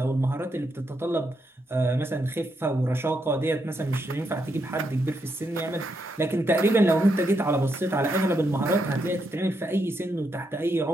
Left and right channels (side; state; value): both; normal; correlation 0.80